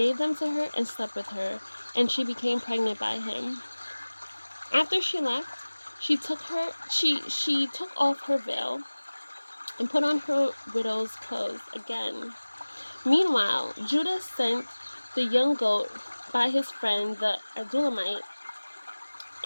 them to her and slept with her, and she became pregnant by him. After she left, she took off her veil and put on her widow's clothes again. Meanwhile, Judah sent the young goat by his friend the Adullamite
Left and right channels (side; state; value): both; inverted; correlation -1.00